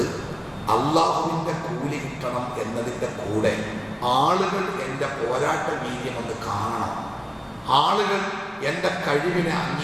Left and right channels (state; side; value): identical; both; correlation 1.00